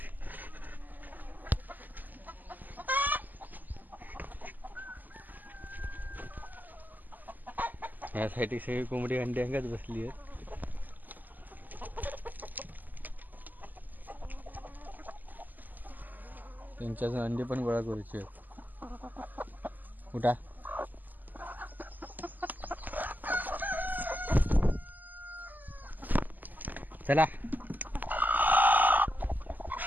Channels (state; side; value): late; left; 0.085 ms